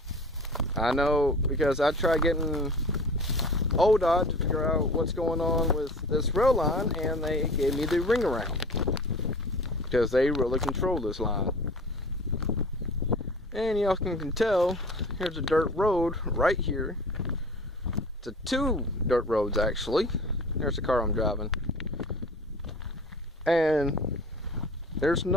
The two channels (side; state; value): both; normal; correlation 0.40